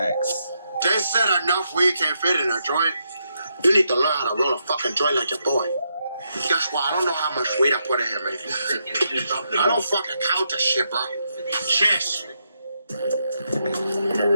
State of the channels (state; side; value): inverted; both; correlation -0.80